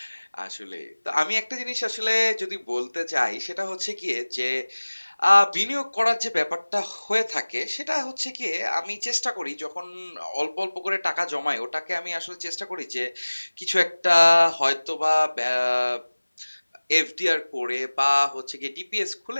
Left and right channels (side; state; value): both; inverted; correlation -1.00